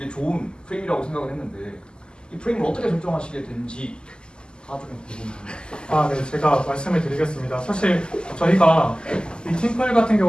좋은 프레임이라고 생각을 했는데 이 프레임을 어떻게 설정하시게 된지 다 좀 궁금합니다. 네, 제가 말씀을 드리겠습니다. 사실 저희가 이 팀플 같은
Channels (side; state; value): right; late; 0.047 ms